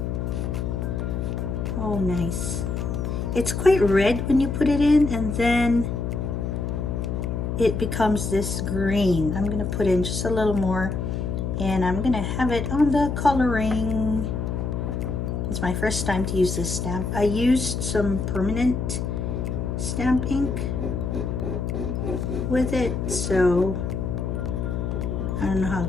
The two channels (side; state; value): left; noise; hum, 2 dB below the sound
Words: Oh, nice. It's quite red when you put it in, and then it becomes this green. I'm gonna put in just a little more, and I'm gonna have it on the Col-o-ring. It's my first time to use this stamp. I used some permanent stamp ink with it, so I don't know how